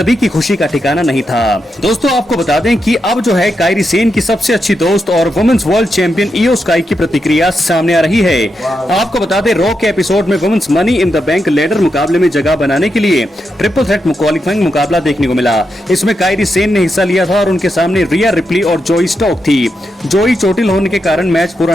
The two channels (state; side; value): normal; both; correlation 0.85